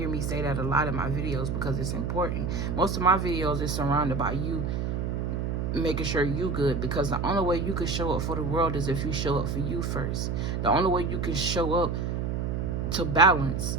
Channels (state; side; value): noise; right; hum, 1 dB below the sound